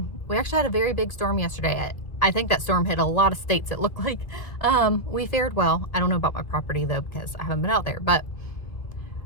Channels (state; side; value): late; right; 2.1 ms